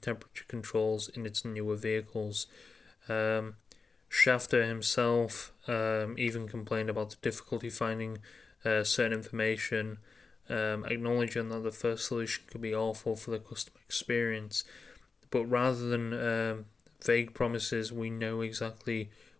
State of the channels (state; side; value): quieter; right; 4.5 dB